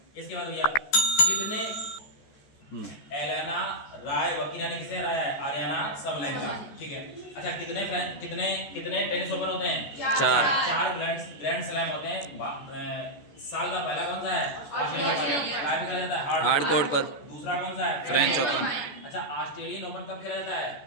इसके बाद भैया कितने एलेना रायबकीना ने किसे हराया है? Aryna Sabalenka. ठीक है। अच्छा, कितने टेनिस ओपन होते हैं? 4 ग्रैंड स्लैम होते हैं। साल का पहला कौन सा है? Australian open. काय पे खेला जाता है? हार्ड कोर्ट पर। दूसरा कौन सा है? French open. अच्छा, ऑस्ट्रेलियन ओपन कब खेला जाता है?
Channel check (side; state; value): right; late; 14 ms